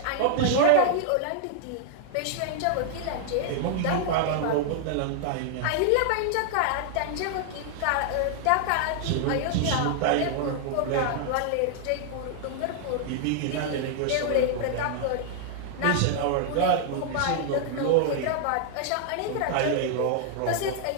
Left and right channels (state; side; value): different; both; correlation 0.00